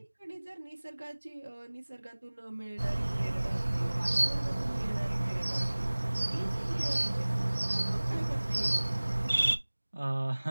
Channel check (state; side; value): inverted; both; correlation -1.00